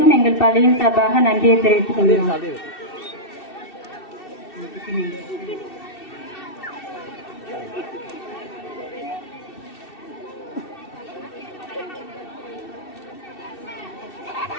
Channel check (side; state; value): right; late; 2.7 ms